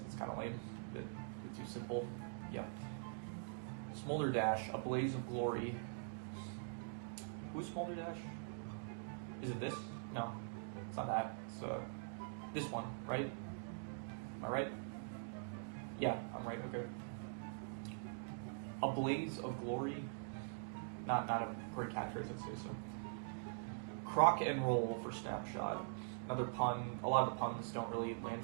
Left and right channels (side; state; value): left; silent; digital silence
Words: kind of lame. A bit too simple. Yeah. Smolder Dash, A Blaze of Glory. Who's Smolder Dash? Is it this? No, it's not that. It's this one, right? Am I right? Yeah, I'm right. Okay. A Blaze of Glory. Not a great catchphrase, I'd say so. Croc and Roll for Snapshot. Another pun. A lot of the puns don't really land